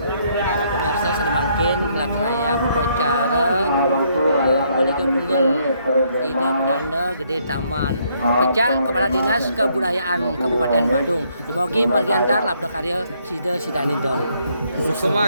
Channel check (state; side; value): inverted; both; correlation -0.70